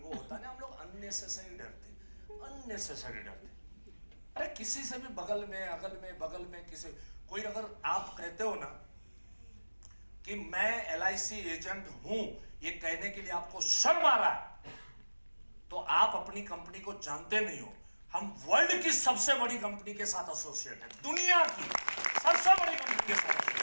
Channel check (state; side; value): inverted; both; correlation -1.00